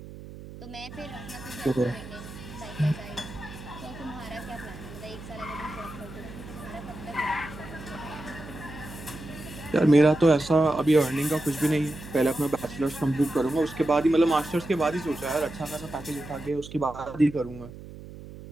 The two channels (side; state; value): right; noise; hum, 14 dB below the sound